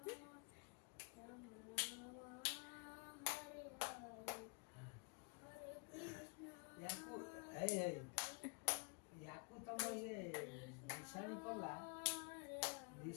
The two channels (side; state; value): right; quieter; 34.2 dB